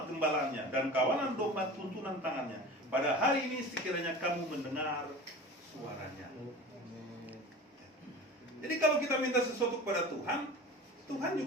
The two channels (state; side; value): normal; both; correlation 0.36